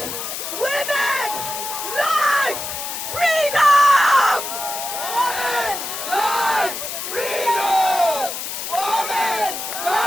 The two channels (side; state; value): left; noise; hiss, 6 dB below the sound